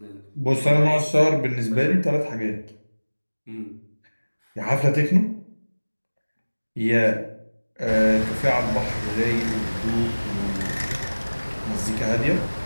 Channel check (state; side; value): inverted; both; correlation -1.00